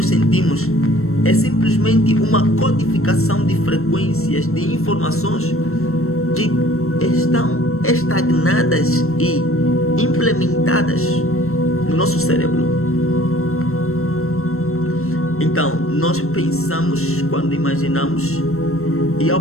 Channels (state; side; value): late; right; 0.62 ms